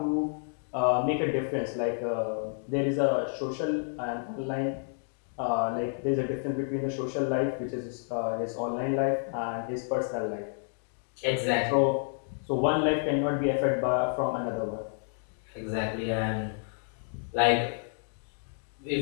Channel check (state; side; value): silent; right; 58 dB below the other